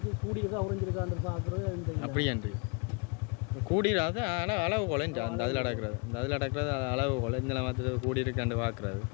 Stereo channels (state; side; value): quieter; right; 33.6 dB